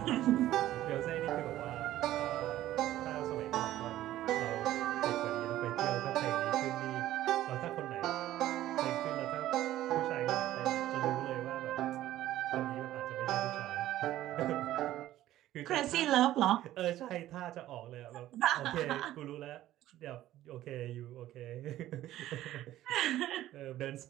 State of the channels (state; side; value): quieter; left; 14.0 dB